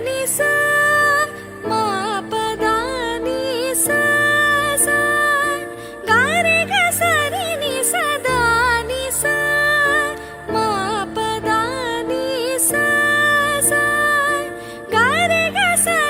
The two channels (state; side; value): identical; both; correlation 1.00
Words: नि सा मा पद नि सा सा गा रे ग सा रि नि सा द नि सा मा पद नि सा सा गा रे ग सा